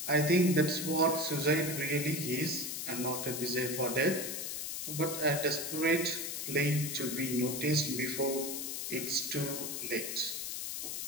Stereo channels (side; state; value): left; noise; hiss, 4 dB below the sound